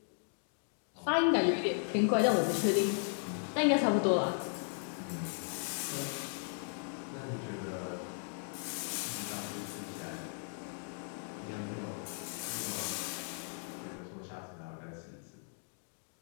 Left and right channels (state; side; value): silent; right; 54 dB below the other